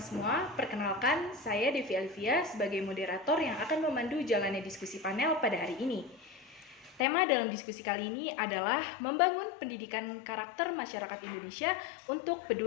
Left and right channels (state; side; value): drops out; right; at 7.1 s